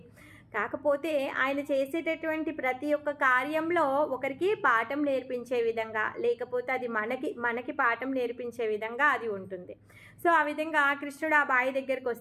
కాకపోతే ఆయన చేసేటటువంటి ప్రతి ఒక్క కార్యంలో ఒకరికి పాఠం నేర్పించే విధంగా, లేకపోతే అది మనకి పాఠం నేర్పించే విధంగా అది ఉంటుంది. సో ఆ విధంగా కృష్ణుడు ఆ బావి దగ్గరికి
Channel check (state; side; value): identical; both; correlation 1.00